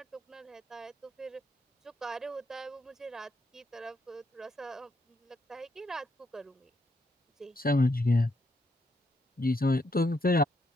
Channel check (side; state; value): both; normal; correlation 0.77